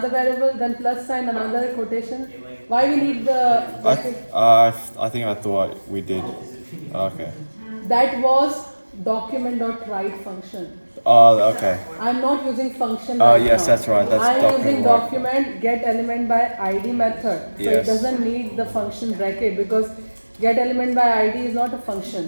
variable. Then plus sign another quotation. Why we need the bracket? I think I thought we did. Okay. That was document.write function. Oh, okay. I'm not using function Oh, right yes, now. that's right. That's I'm using document. document get element by ID method. So it Yes. doesn't need the function bracket because get element by ID is not a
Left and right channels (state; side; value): inverted; both; correlation -1.00